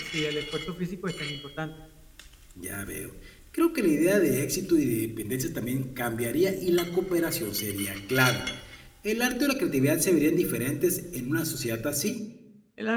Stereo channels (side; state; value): both; identical; correlation 1.00